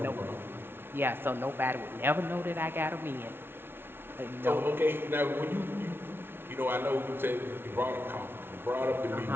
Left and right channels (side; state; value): left; late; 0.11 ms